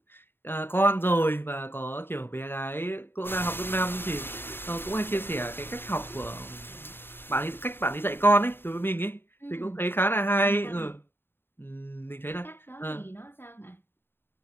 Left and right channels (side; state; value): right; late; 0.11 ms